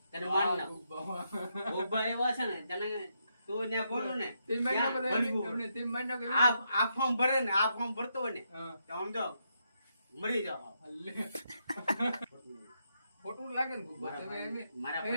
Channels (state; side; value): inverted; both; correlation -0.80